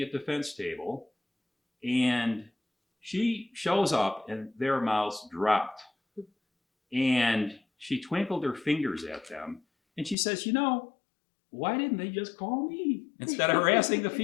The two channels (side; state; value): right; drops out; at 10.2 s